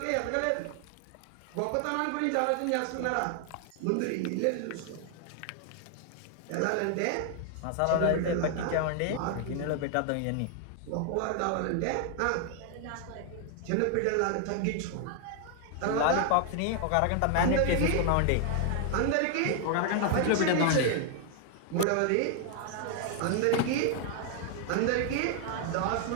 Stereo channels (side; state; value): both; different; correlation 0.00